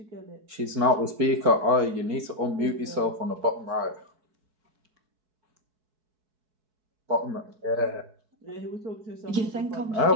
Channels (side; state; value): left; late; 4.6 ms